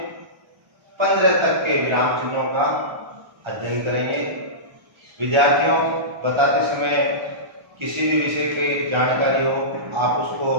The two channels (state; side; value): late; left; 1.3 ms